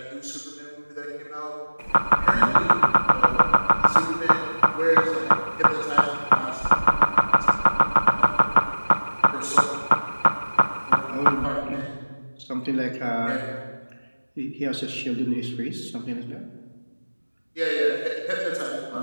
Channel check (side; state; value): both; inverted; correlation -1.00